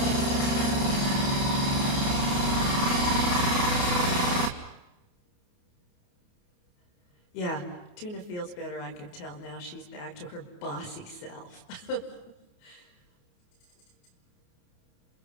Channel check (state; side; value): late; right; 28 ms